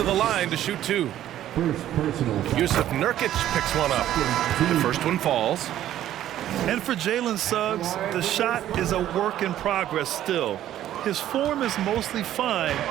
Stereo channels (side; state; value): left; quieter; 12.3 dB